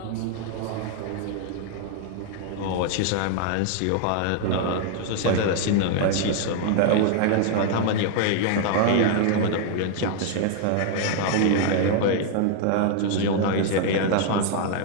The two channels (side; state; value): both; different; correlation 0.00